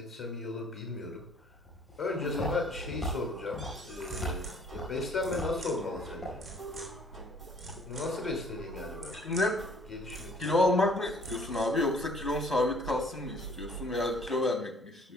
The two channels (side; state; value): both; normal; correlation 0.57